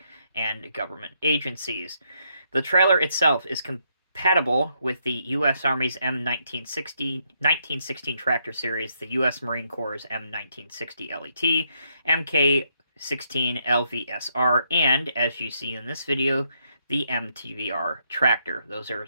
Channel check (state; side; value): inverted; both; correlation -0.76